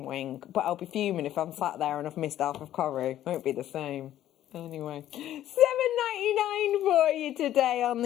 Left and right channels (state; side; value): quieter; right; 12.4 dB